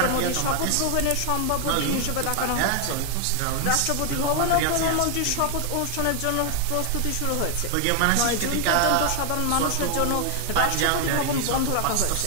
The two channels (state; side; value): different; both; correlation 0.00